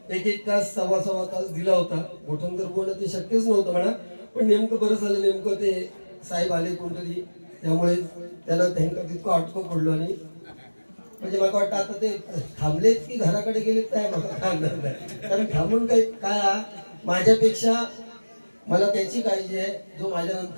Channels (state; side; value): inverted; both; correlation -1.00